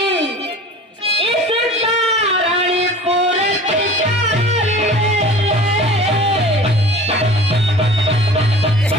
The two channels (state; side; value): normal; both; correlation 0.42